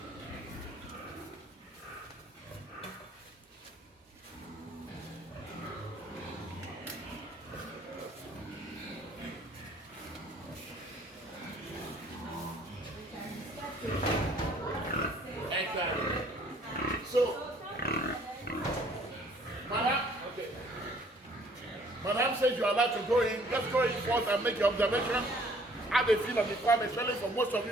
Exactly. So, Madam says you are allowed to go in. Let's go in first and make your observation. Have a feel of the farm, especially for most of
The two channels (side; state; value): both; normal; correlation 0.58